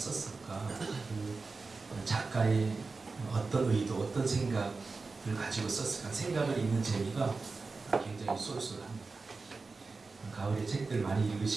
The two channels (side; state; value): left; quieter; 4.0 dB